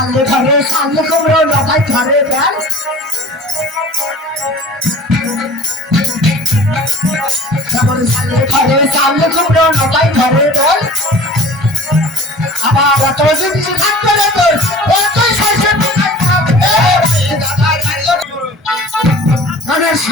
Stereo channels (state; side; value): normal; both; correlation 0.42